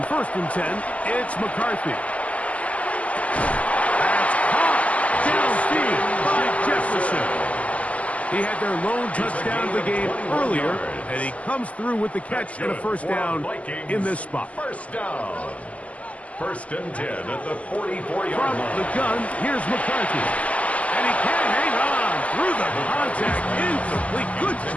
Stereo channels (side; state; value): right; late; 0.069 ms